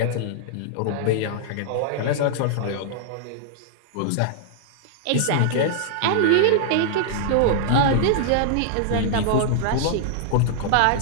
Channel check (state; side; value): different; both; correlation -0.01